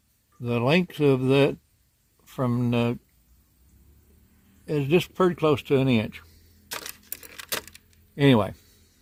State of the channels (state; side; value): identical; both; correlation 1.00